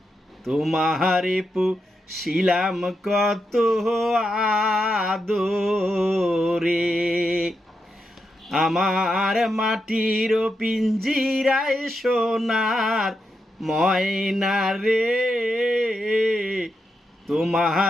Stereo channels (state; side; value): normal; both; correlation 0.85